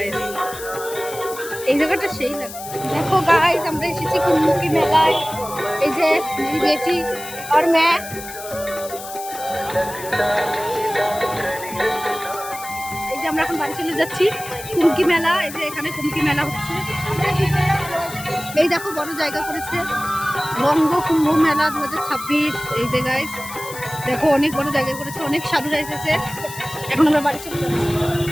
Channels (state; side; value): noise; left; hiss, 12 dB below the sound